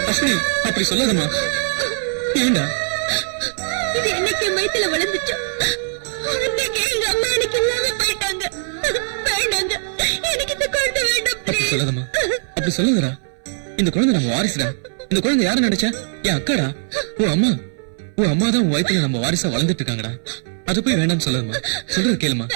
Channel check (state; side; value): silent; left; 61 dB below the other